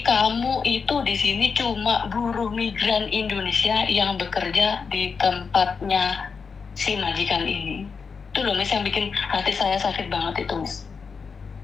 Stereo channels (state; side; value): quieter; right; 5.4 dB